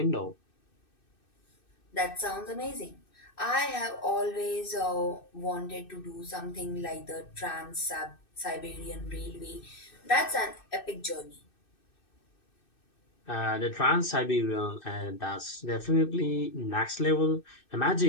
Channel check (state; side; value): late; right; 2.6 ms